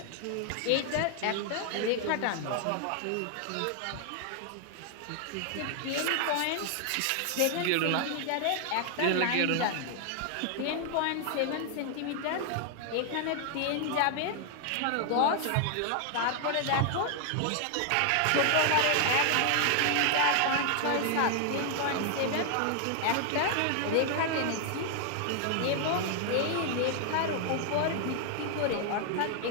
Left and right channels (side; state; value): both; different; correlation 0.00